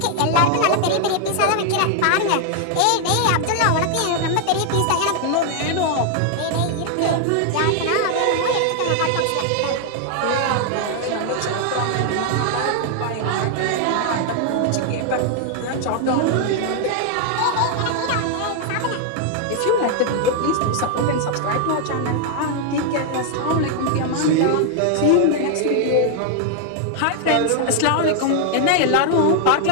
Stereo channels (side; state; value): both; different; correlation 0.00